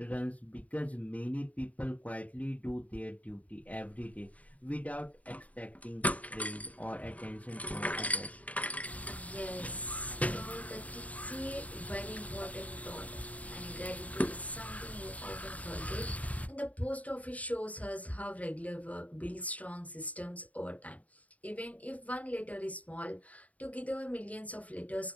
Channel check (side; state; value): right; late; 0.070 ms